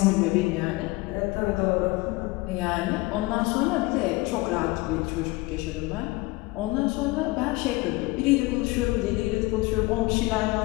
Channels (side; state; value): right; quieter; 22.2 dB